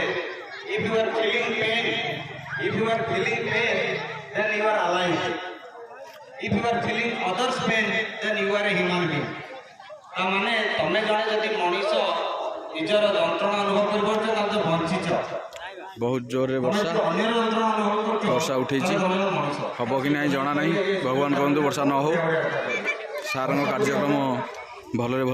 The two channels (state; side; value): identical; both; correlation 1.00